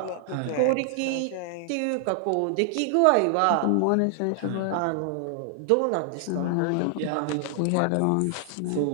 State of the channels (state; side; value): different; both; correlation 0.00